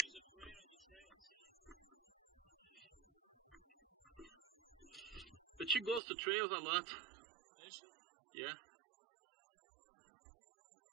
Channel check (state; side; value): drops out; left; at 6.0 s